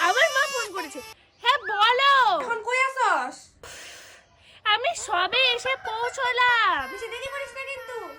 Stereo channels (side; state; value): both; identical; correlation 1.00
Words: আবার মা ফোন করেছে। হ্যাঁ বলো। এখন কই আছস? আমি সবে এসে পৌঁছলাম। বেশি দেরি করিস না কিন্তু।